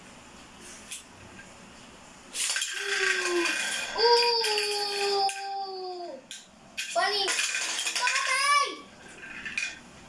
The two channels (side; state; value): both; identical; correlation 1.00